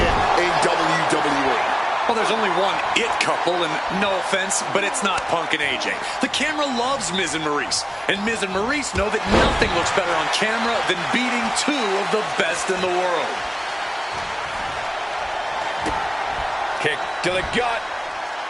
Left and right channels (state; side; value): identical; both; correlation 1.00